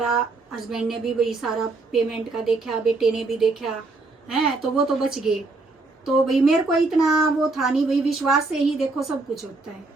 हस्बैंड ने भी भाई सारा पेमेंट का देखा, बेटे ने भी देखा है, तो वो तो बच गए। तो भाई मेरे को इतना वो था नहीं भाई, विश्वास से ही देखो सब कुछ होता है।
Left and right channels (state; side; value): quieter; left; 3.5 dB